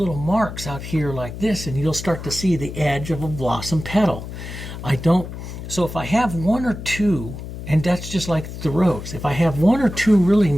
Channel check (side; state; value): left; noise; hum, 10 dB below the sound